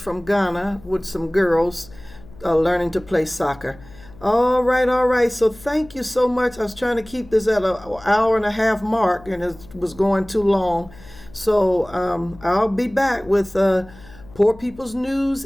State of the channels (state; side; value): noise; left; hum, 21 dB below the sound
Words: Ghana with some girls learning to play soccer. All right. So thank you so much. I was trying to keep this at an 1.5 hour mark, and it was going too long. So I'll be back with Poor People's News